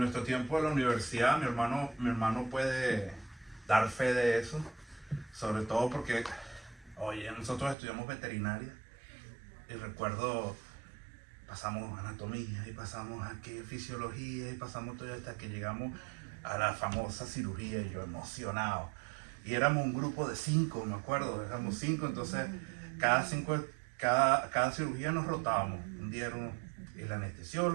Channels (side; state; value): left; drops out; at 7.8 s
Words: tiempo de la universidad. Mi hermano puede dar fe de eso, sobre todo porque, oye, nosotros estudiamos veterinaria y recuerdo, pasamos anatomía y pasamos aquí fisiología y pasamos todo hasta que llegamos a la famosa cirugía, y yo emocionado. Y éramos un grupo de 5, me acuerdo, éramos 5, entonces cada cirugía nos rotábamos. Un día era el